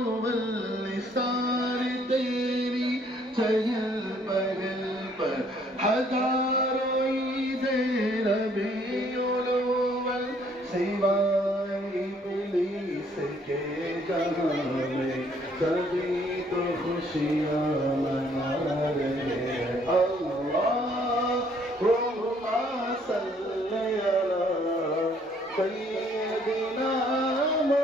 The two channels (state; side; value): normal; both; correlation 0.64